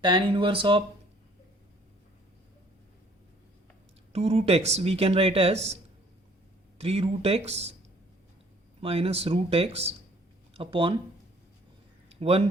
tan inverse of 2 root x we can write as 3 root x minus root x upon 1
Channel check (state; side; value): normal; both; correlation 0.58